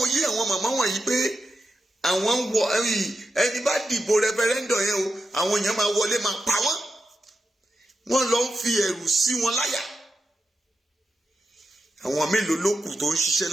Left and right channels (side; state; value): both; normal; correlation 0.88